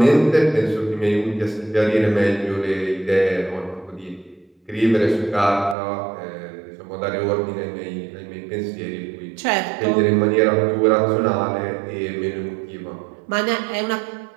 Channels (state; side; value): drops out; left; at 5.8 s